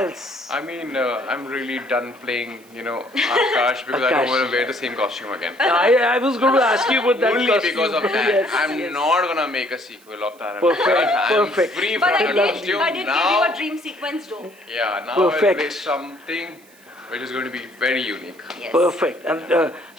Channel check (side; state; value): right; noise; hiss, 28 dB below the sound